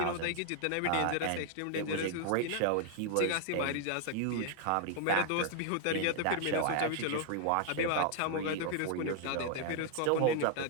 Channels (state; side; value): different; both; correlation 0.00